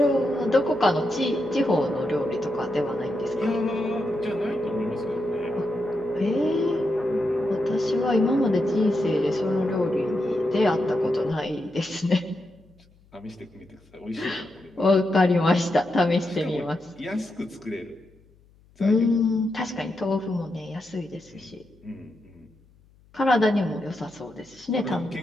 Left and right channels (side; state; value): left; noise; hum, 30 dB below the sound